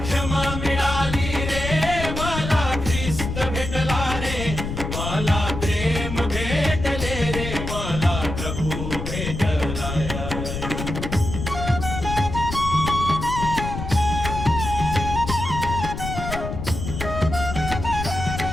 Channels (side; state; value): left; noise; rumble, 5 dB below the sound